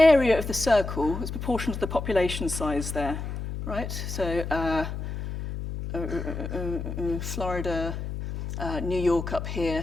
of the circle is proportional to the population size there, right? So Florida, New York up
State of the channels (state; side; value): noise; left; hum, 6 dB below the sound